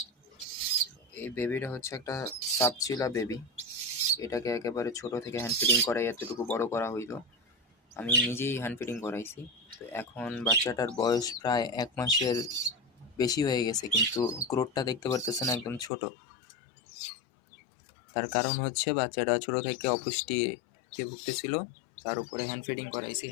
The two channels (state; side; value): drops out; right; at 15.9 s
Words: এই বেবিটা হচ্ছে একটা সাপচিলা বেবি। এটাকে একেবারে ছোট থেকে হ্যান্ড ফিডিং করাই এতটুকু বড় করা হইলো। আমি নিজেই হ্যান্ড ফিডিং করাইছি। তো এখন বাচ্চাটার বয়স প্রায় ১ মাসের বেশি হয়ে গেছে, কিন্তু গ্রোথটা দেখতে পারতেছেন একদম ছোট। তার কারণ হচ্ছে বাচ্চাটা ছোট থেকে অপুষ্টিতে ভুগতেছিল। তার উপরে হ্যান্ড ফিডিং করাইছি।